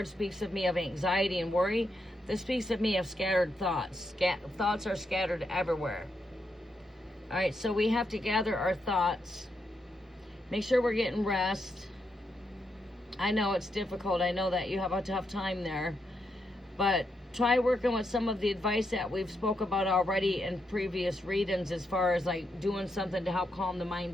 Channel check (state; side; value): normal; both; correlation 0.82